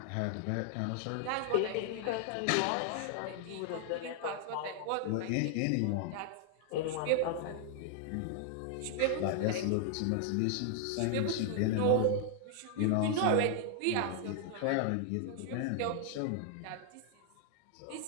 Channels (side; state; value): both; different; correlation 0.00